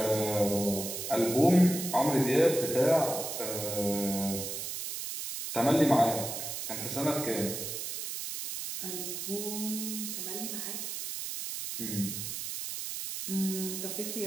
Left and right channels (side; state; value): right; noise; hiss, 5 dB below the sound